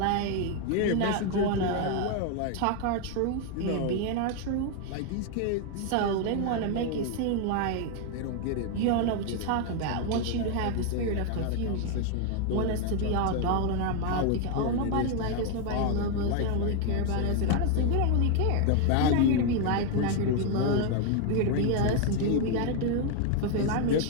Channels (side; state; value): both; different; correlation 0.01